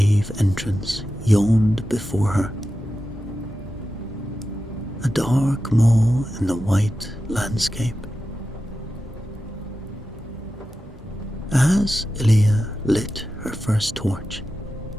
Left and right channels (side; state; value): both; normal; correlation 0.92